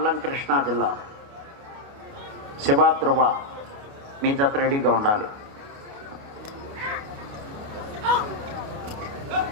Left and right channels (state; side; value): late; left; 29 ms